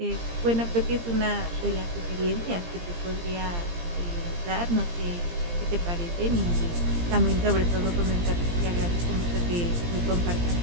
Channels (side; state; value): left; late; 17 ms